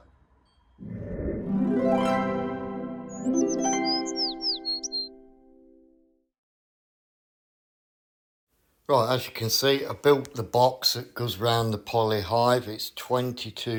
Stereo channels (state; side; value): identical; both; correlation 1.00